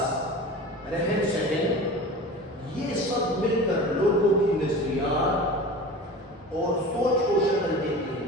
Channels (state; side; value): normal; both; correlation 0.35